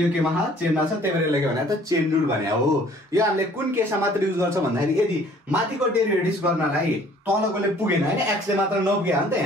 केमा चेनमा छ त्यही भएर के भने त चेन रुल भने हो यो हामीले कुन केसमा मात्र युज गर्छ भन्दाखेरि यदि माथिको डेरिभेटिभ गर्नलाई तलकोले पुगेन हैन x ले मात्र नपुगे हो नि त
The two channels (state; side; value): normal; both; correlation 0.55